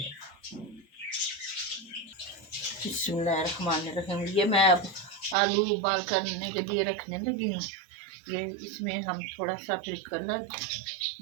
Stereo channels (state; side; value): drops out; left; at 5.4 s